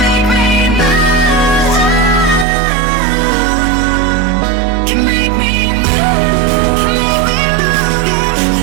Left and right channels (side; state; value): left; drops out; at 2.5 s